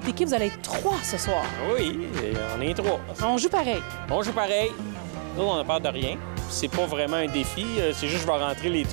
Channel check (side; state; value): left; silent; digital silence